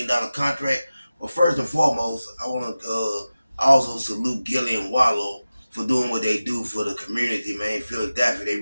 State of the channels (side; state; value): both; inverted; correlation -0.95